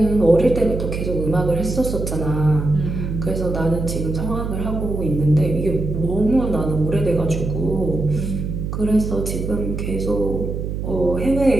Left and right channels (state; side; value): noise; right; hum, 4 dB below the sound